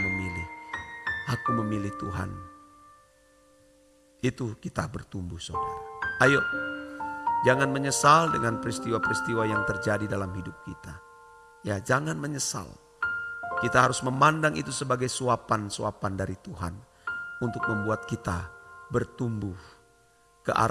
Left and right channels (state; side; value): identical; both; correlation 1.00